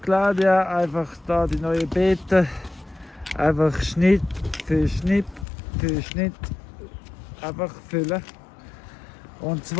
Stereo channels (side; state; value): right; drops out; at 5.5 s